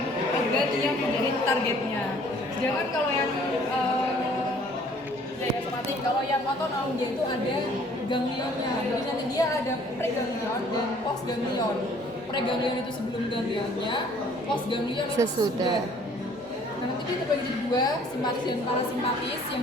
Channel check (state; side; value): normal; both; correlation 0.57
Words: organ yang menjadi targetnya. Sedangkan kalau yang daya somatik, kalau yang otonom dia itu ada ganglionnya. Jadi nanti dia ada preganglion dan postganglion. Preganglion itu sebelum ganglionnya, postganglion itu Sesudah. Nah nanti dia terbagi jadi dua, simpatis dan parasimpatis,